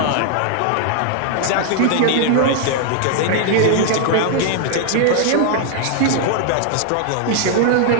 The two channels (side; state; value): both; different; correlation 0.00